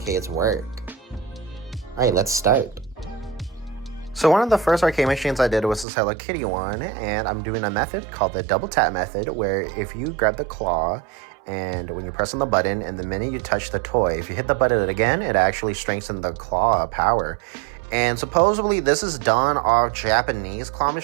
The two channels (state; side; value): drops out; left; at 5.9 s